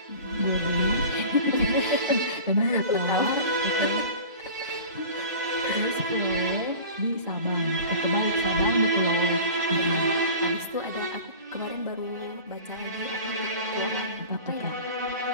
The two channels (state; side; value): inverted; both; correlation -0.38